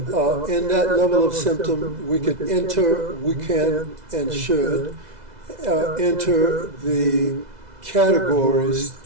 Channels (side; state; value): left; late; 2.0 ms